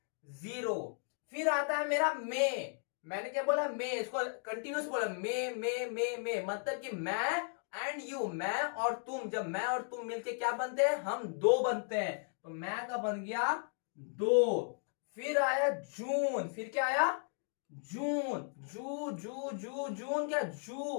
0। फिर आता है मेरा मई, मैंने क्या बोला? मई, इसको कंटिन्यूस बोला, मई, मतलब कि मैं एंड यू, मैं और तुम, जब मैं और तुम मिलके क्या बनते हैं? हम 2 बनते हैं, तो मैं का बन गया 2। फिर आया जून, फिर क्या आया? जून, जू जू जू जून, क्या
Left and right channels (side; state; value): right; silent; 54 dB below the other